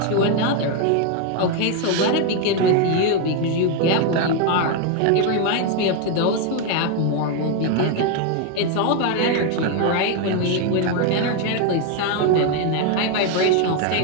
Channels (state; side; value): different; both; correlation 0.01